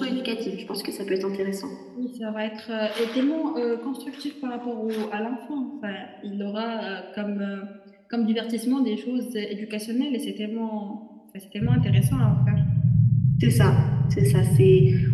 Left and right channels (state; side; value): identical; both; correlation 1.00